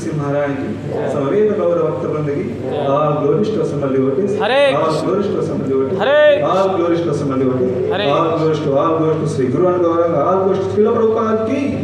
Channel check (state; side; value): identical; both; correlation 1.00